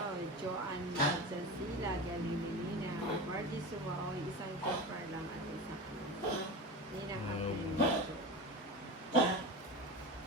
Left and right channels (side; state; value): both; normal; correlation 0.27